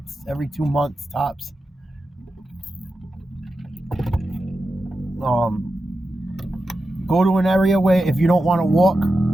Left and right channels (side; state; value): both; normal; correlation 0.90